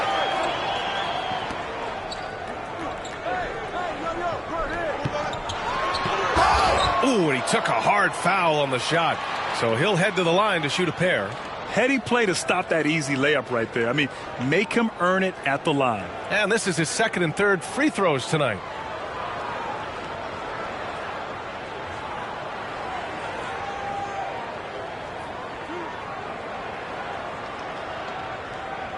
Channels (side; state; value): both; identical; correlation 1.00